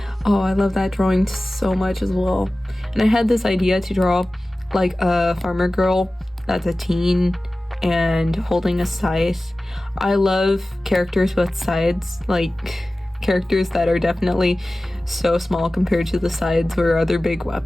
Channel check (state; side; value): normal; both; correlation 0.96